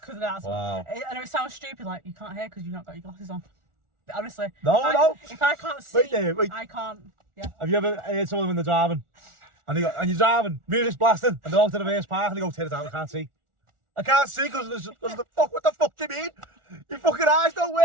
Because that's Wow. I know it sounds stupid, like you can't hear because you've not got your glasses on. But honestly, No. if I can't see, Wait there, wait. I can't. Yeah. Have you ever heard someone when they're driving, and you're driving, music's blasting, and they're out to the reverse park, and they go, "Turn it down, I can't see." I can't see because of the fuck. What the fuck do you mean? Your fucking eyes don't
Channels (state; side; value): late; left; 1.4 ms